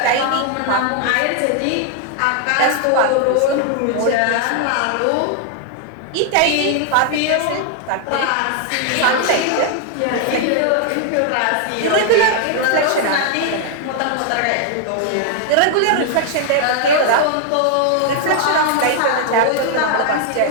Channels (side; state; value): both; different; correlation 0.00